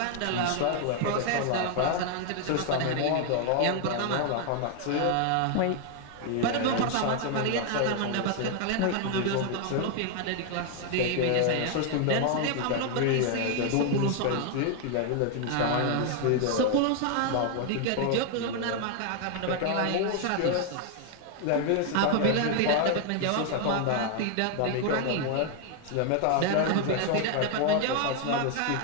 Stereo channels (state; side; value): different; both; correlation 0.00